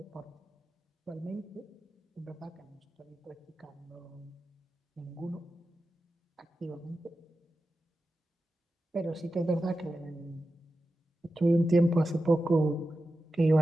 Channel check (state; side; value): normal; both; correlation 0.92